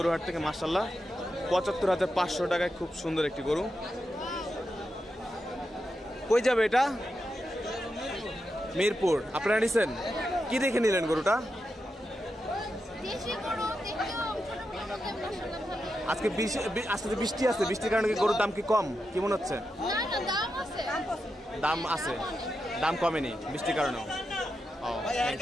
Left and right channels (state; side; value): normal; both; correlation 0.87